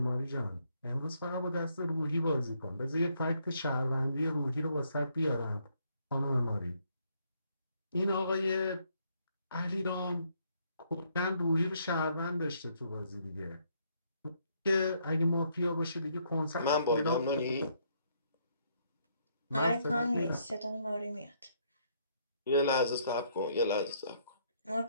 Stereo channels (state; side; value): inverted; both; correlation -0.71